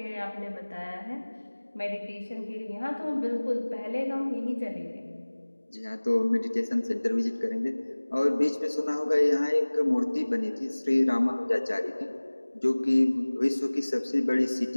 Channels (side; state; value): both; inverted; correlation -1.00